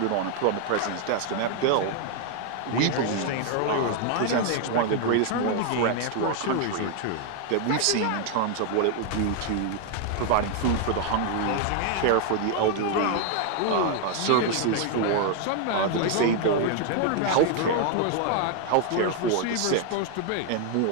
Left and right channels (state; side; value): different; both; correlation 0.00